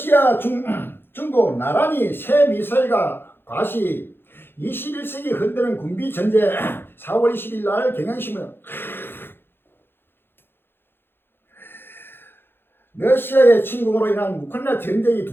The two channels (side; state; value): right; late; 0.10 ms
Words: 중국 나란히 새 미사일과 과시 21세기 흔드는 군비 전제 4월 20일 날 경향신문 러시아의 침공으로 인한 우크라이나 전쟁이